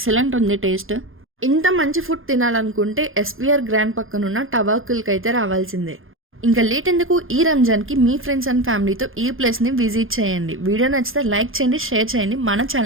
ఉంది టేస్ట్. ఇంత మంచి ఫుడ్ తినాలనుకుంటే ఎస్బీఆర్ గ్రాండ్ పక్కనున్న టవాకుల్కి అయితే రావాల్సిందే. ఇంకా లేట్ ఎందుకు, ఈ రంజాన్ కి మీ ఫ్రెండ్స్ అండ్ ఫ్యామిలీతో ఈ ప్లేస్ ని విజిట్ చేయండి. వీడియో నచ్చితే లైక్ చేయండి, షేర్ చేయండి, మన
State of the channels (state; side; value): late; left; 0.60 ms